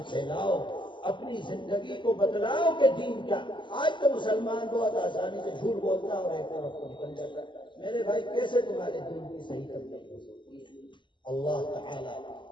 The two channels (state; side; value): late; right; 0.23 ms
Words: پھیلاؤ، اپنی زندگی کو بتلاؤ کہ دین کیا۔ آج تو مسلمان بہت آسانی سے جھوٹ بولتا ہے اور ایک طرف کو نکل جاتا ہے، میرے بھائی کیسے تمہارے دین کی صحیح تبلیغ ہو سکتی ہے؟ اللہ تعالی